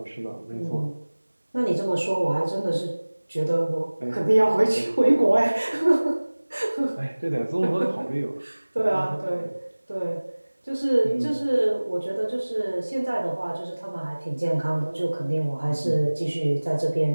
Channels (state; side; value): inverted; both; correlation -1.00